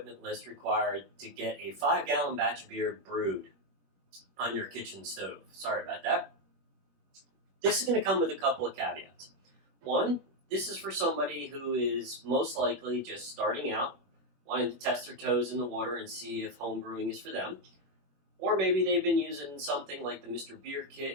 list required to get a 5-gallon batch of beer brewed on your kitchen stove. Sorry about that. This is going to come with a couple of caveats. One, this is for somebody who is most likely just starting out, wanting to test their toes in the water and see if home brewing is for them. Or maybe they've been using something like the Mr. Beer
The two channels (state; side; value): late; left; 21 ms